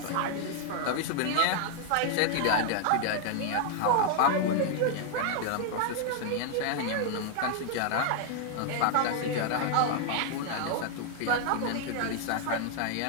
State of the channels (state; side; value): different; both; correlation 0.00